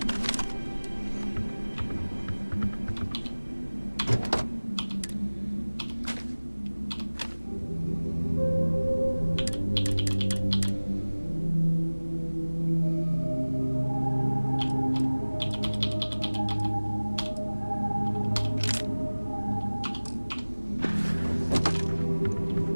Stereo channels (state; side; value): inverted; both; correlation -1.00